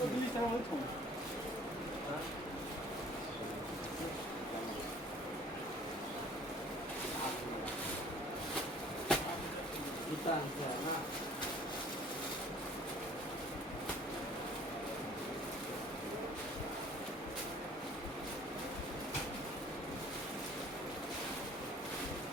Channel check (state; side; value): normal; both; correlation 0.52